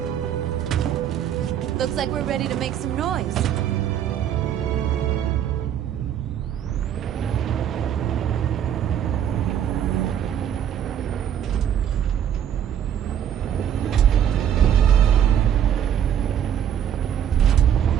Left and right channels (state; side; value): quieter; left; 9.5 dB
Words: Looks like we're ready to make some noise.